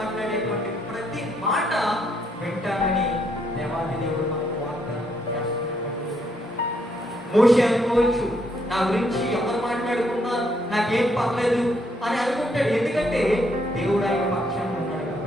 ప్రతి మాట వింటానని దేవాది దేవుడు మనకు వాగ్దానం చేస్తున్నటువంటి. మోషే అనుకోవచ్చు, నా గురించి ఎవరు మాట్లాడుకున్నా నాకేం పర్లేదు అని అనుకుంటాడు. ఎందుకంటే దేవుడు ఆయన పక్షాన ఉన్నాడు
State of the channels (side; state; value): both; normal; correlation 0.73